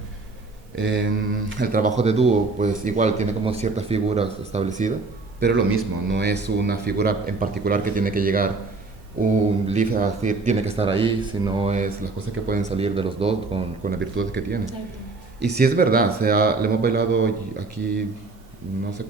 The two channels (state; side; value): quieter; left; 3.7 dB